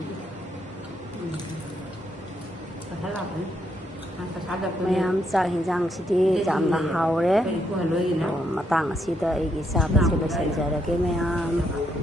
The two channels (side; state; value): both; normal; correlation 0.76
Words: Kata lah kan. Kata ada pun. မယမ်စာဟင်ဂျန်စီတီဂျမ်နာဟောရဲ Ku haloi na. မတန်းစီတဲ့အီဂီစာပဲဆက်လို့စင်ကြရကေမယမ်